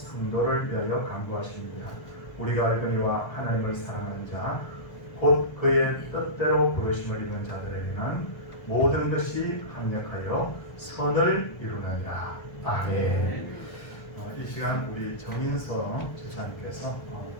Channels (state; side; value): late; right; 1.4 ms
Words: 위하여 간구하십니다. 우리가 알거니와 하나님을 사랑하는 자 곧 그의 뜻대로 부르심을 입은 자들에게는 모든 것이 합력하여 선을 이루느니라. 아멘. 이 시간 우리 정인서 제사님께서